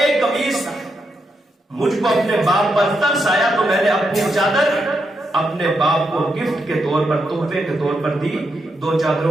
قمیص تھا، مجھ کو اپنے باپ پر ترس آیا تو میں نے اپنی چادر اپنے باپ کو گفٹ کے طور پر، تحفے کے طور پر دی، 2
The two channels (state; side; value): normal; both; correlation 0.83